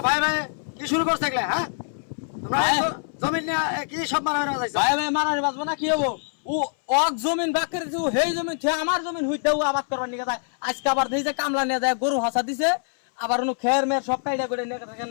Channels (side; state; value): right; silent; 62 dB below the other